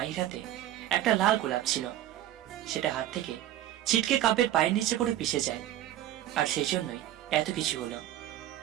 হাতে একটা লাল গোলাপ ছিল, সেটা হাত থেকে ছিটকে কাব্যের পায়ের নিচে পড়ে পিষে যায়। আর সেই জন্যই এত কিছু হলো।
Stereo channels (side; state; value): left; quieter; 12.9 dB